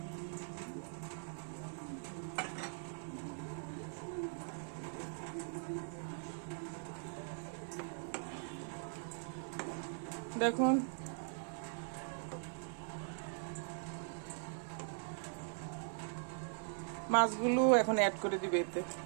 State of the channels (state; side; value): silent; left; 50 dB below the other